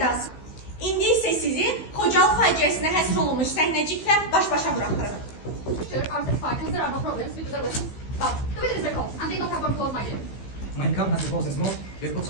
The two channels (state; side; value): late; right; 15 ms